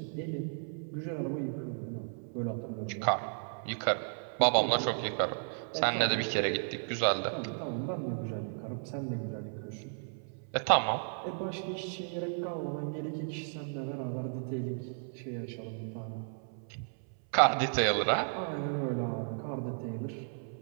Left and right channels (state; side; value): silent; left; 55 dB below the other